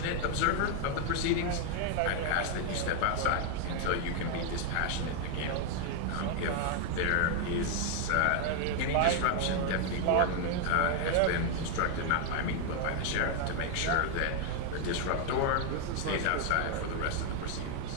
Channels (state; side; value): different; both; correlation 0.00